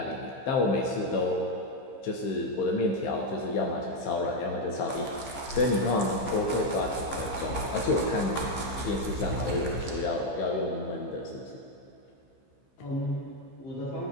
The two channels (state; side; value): late; right; 15 ms